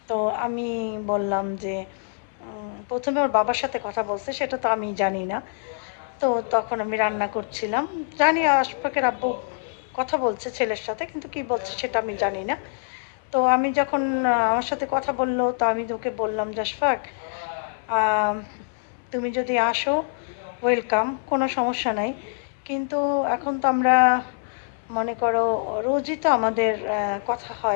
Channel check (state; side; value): silent; right; 59 dB below the other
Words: তো আমি বললাম যে প্রথমে ওর বাবার সাথে কথা বলছে, সেটা তো আমি জানি না। তো তখন আমি রান্না করছিলাম, জানি আশফাকের আব্বু কথা বলছে ছেলের সাথে, কিন্তু কি বলছে সেটা আমি জানি না। তো আমি যখন আমার সাথে কথা বললো, তো আমি তোকে বললাম যে আশফাক, আম, তুমি যদি আসো ওয়েলকাম, কোনো সমস্যা নাই। কিন্তু এখন তো আমরা, মনে করো, রোজই তো আমাদের কথা